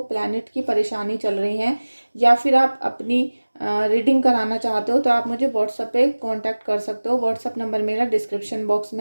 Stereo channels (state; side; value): inverted; both; correlation -1.00